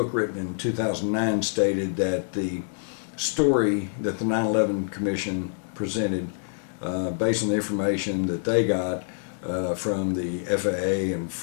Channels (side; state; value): right; silent; 61 dB below the other